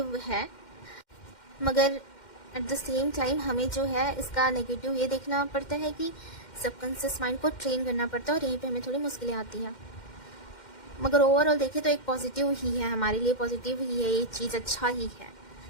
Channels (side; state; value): right; late; 2.1 ms